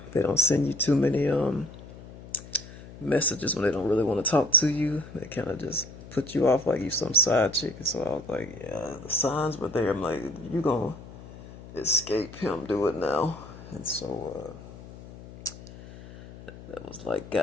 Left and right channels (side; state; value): left; noise; hum, 16 dB below the sound